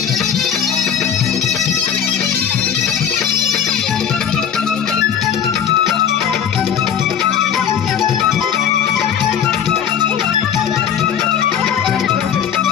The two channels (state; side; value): quieter; right; 8.3 dB